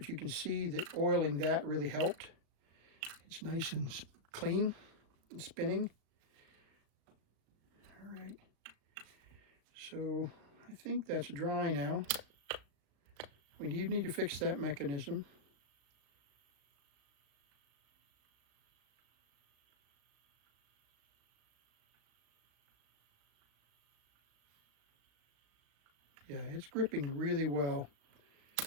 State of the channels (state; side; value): late; left; 36 ms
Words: you can see that oiling that really helped. It's nice and clean and spinning. All right. So I think that's dry now. We need to fix that mechanism. Yeah, it's gripping really well.